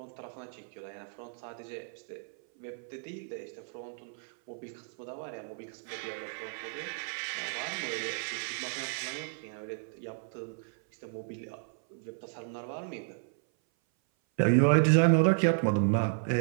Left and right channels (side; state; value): left; silent; 56 dB below the other